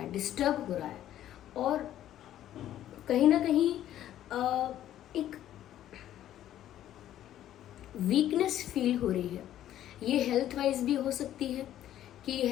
डिस्टर्ब हो रहा है, और कहीं ना कहीं एक वीकनेस फील हो रही है। ये हेल्थ वाइज भी हो सकती है कि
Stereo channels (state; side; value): quieter; right; 12.1 dB